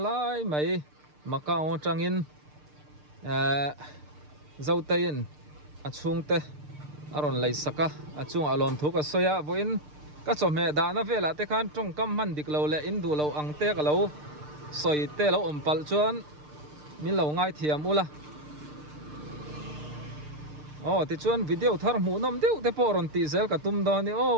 lai mai Macau changin zau tayin achung te aron lei saka achung alom thuka soya voin ka chome da na vela te khan tong kam man dik lo le in du lo ang te ka lo soi te lo ompal chuan min lo ngai thiam ula ti chuan video thar mu nom deu te poron ti zel ka tum do ni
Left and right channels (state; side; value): late; left; 6.7 ms